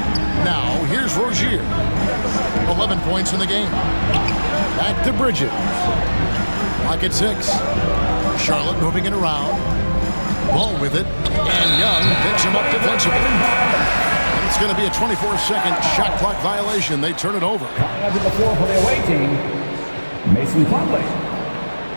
Now, here's Rozier. 11 points in the game. Back to Bridges. Clock at 6. Charlotte moving it around. Ball with it. And Young picks him up defensively. And it's going to be a 24-second shot clock violation. They turn it over. Coming to the floor for the away team, Mason Plumlee.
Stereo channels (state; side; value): inverted; both; correlation -1.00